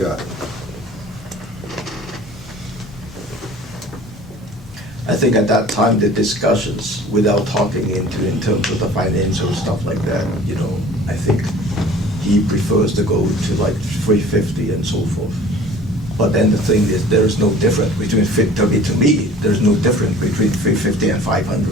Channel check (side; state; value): both; normal; correlation 0.47